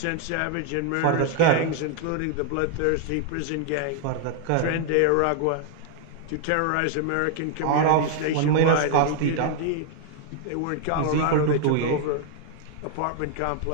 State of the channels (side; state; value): both; different; correlation 0.00